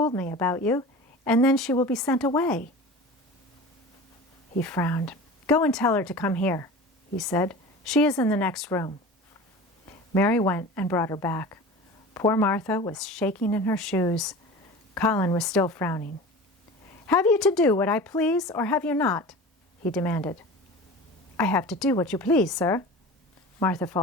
me about you, and then she will be sent away." He frowned. "Go and tell her to come here," he said. "She is in the next room." Mary went and brought her back. Poor Martha was shaking in her shoes. Colin was still frowning. "Have you to do what I please, or have you not?" he demanded. "I have to do what you please, sir," Martha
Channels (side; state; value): both; normal; correlation 0.35